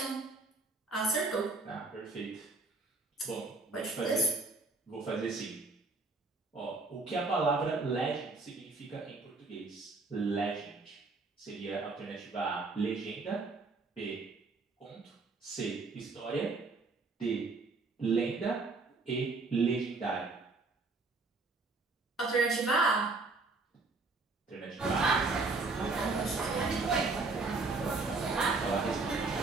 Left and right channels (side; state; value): left; quieter; 3.7 dB